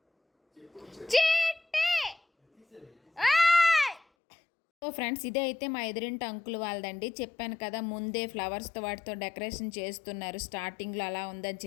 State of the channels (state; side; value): drops out; right; at 4.0 s